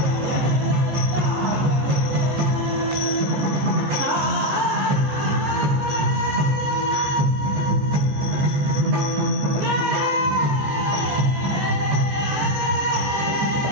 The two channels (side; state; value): left; late; 14 ms